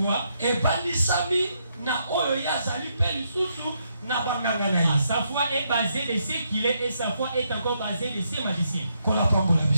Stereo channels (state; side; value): inverted; both; correlation -0.77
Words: Sa foi est basée de ce qu'il est et sa foi est encore basée de ses magiciens. Que